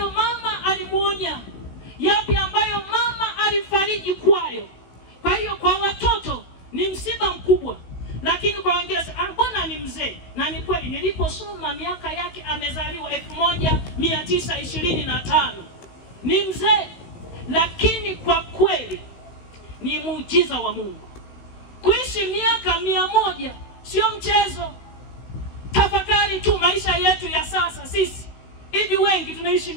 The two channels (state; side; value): late; right; 16 ms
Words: mama alimuonya, yapi ambayo mama alifariji kwayo. Kwa hiyo kwa watoto ni msiba mkubwa, lakini kwa wengine mbona mzee, na ni kweli niliposoma miaka yake amezaliwa 1925. Ni mzee, lakini kwa kweli ni muujiza wa Mungu. Kuishi miaka 100 sio mchezo. Tafakari tu maisha yetu ya sasa sisi. Hivi wengi tunaishi